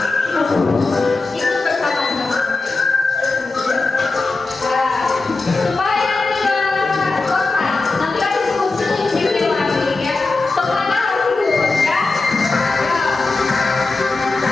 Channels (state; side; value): quieter; right; 3.6 dB